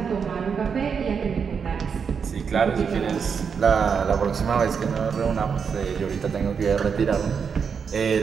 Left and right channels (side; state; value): left; quieter; 6.3 dB